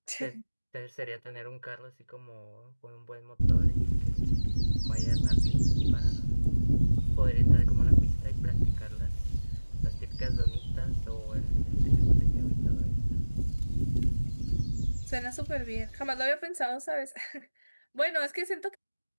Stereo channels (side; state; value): both; inverted; correlation -1.00